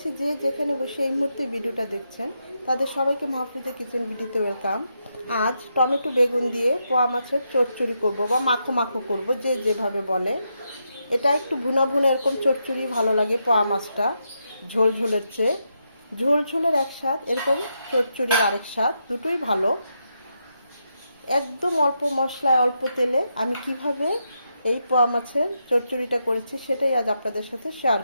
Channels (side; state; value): both; inverted; correlation -0.83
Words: যে যেখানে বসে এই মুহূর্তে ভিডিওটা দেখছেন তাদের সবাইকে মাহফুজা কিচেন ভিডিওতে ওয়েলকাম। আজ টমেটো বেগুন দিয়ে পোয়া মাছের চচ্চড়ি করব বা মাখো মাখো করব, যে যেভাবে বলে। এটা একটু ভুনা ভুনা এরকম চচ্চড়ি ভালো লাগে পোয়া মাছটা, ঝোল ঝোলের চেয়ে। ঝোল ঝোলের এক স্বাদ, এরকম চচ্চড়ির আরেক স্বাদ, দুটোই ভালো। একদম অল্প মশলায় অল্প তেলে আমি কিভাবে এই পোয়া মাছের চচ্চড়িটা করেছি সেটাই আজ আপনাদের সাথে শেয়ার